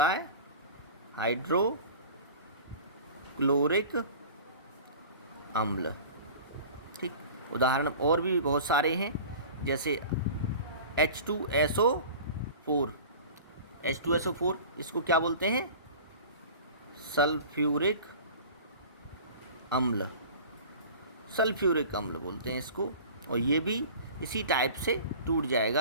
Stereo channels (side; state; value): both; inverted; correlation -0.40